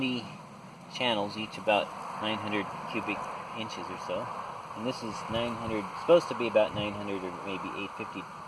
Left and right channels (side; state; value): both; identical; correlation 1.00